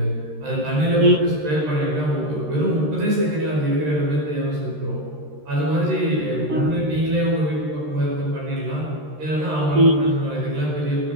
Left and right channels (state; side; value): late; left; 13 ms